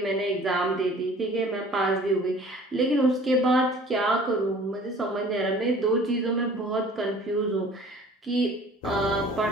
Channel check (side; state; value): both; normal; correlation 0.49